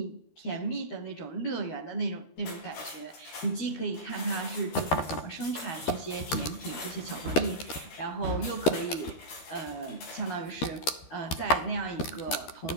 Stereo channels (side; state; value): right; late; 13 ms